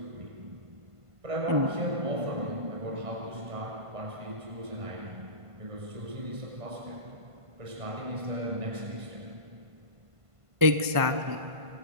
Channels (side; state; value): left; late; 1.5 ms